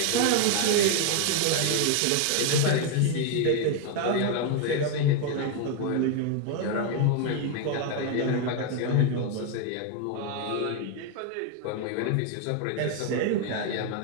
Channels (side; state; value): both; different; correlation 0.01